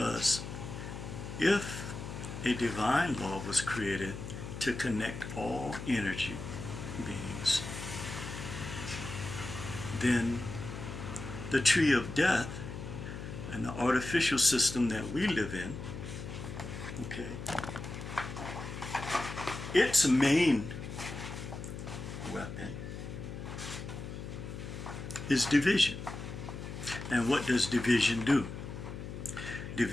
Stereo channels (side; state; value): left; noise; hum, 8 dB below the sound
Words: if a divine law was created to connect all energy beings, then the tree of death and the artificial system that we live in, okay, its main weapon is division. And what does division do?